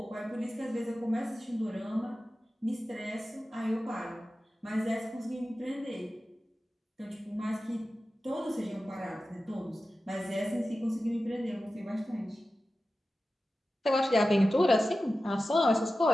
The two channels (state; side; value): normal; both; correlation 0.94